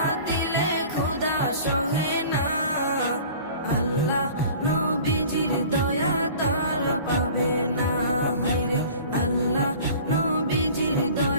দিলে খোদা সহে না। আল্লাহ নবীজির দয়া তারা পাবে না। হায়রে আল্লাহ নবীজির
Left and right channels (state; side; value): inverted; both; correlation -0.44